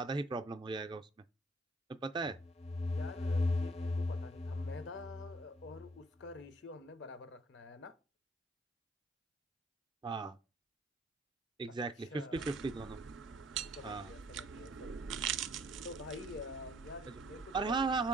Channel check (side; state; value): both; normal; correlation 0.63